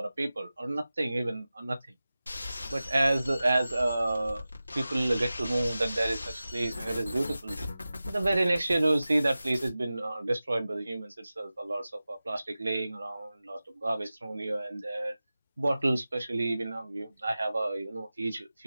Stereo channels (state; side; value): inverted; both; correlation -0.96